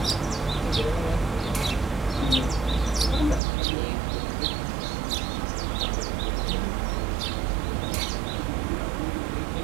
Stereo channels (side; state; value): left; drops out; at 3.4 s